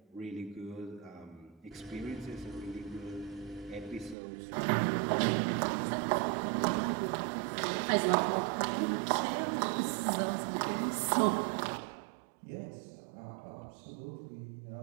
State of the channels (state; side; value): drops out; left; at 4.2 s